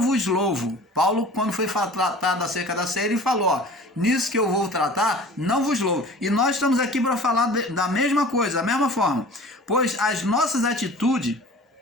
vos louvo. Paulo, quando foi tratado acerca da ceia, ele falou, nisso que eu vou tratar, não vos louvo. E nós estamos aqui para falar da mesma coisa, da mesma forma. Pois as nossas atitudes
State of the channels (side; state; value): both; normal; correlation 0.43